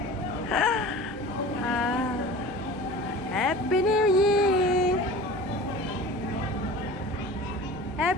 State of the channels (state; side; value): normal; both; correlation 0.38